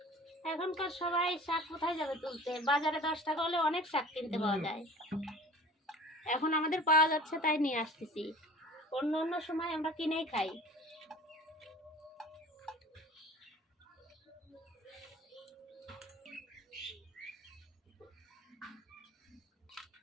এখনকার সবাই শাক কোথায় যাবে তুলতে? বাজারে 10 টাকা হলে অনেক শাক কিনতে পাওয়া যায়। এখন আমাদের পাওয়া যাচ্ছে তাই নিয়ে আসতেছি, অন্য অন্য সময় আমরা কিনেই খাই।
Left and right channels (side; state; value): both; normal; correlation 0.42